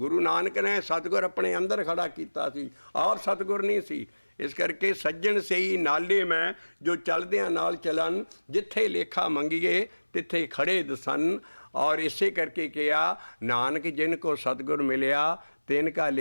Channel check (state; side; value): inverted; both; correlation -1.00